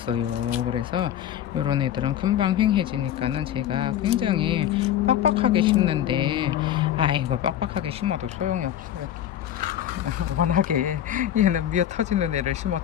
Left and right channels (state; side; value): quieter; right; 11.0 dB